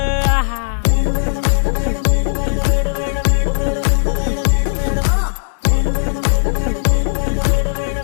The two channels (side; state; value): right; silent; digital silence